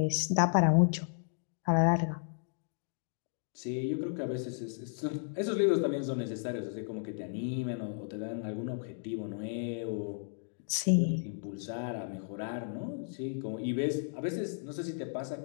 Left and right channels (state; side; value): silent; right; digital silence